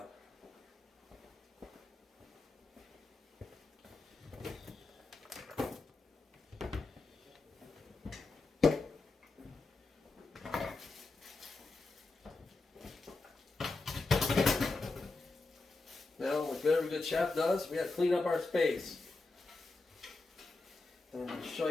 Now, like every good chef does, we got to clean up our space. And I'm going to show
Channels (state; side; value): quieter; right; 3.5 dB